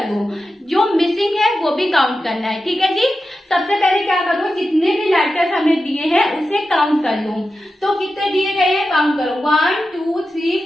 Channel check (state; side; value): normal; both; correlation 0.91